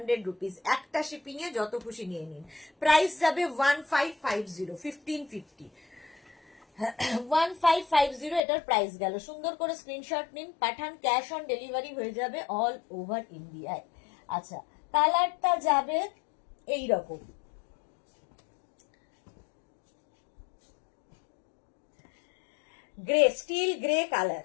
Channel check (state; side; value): drops out; right; at 8.4 s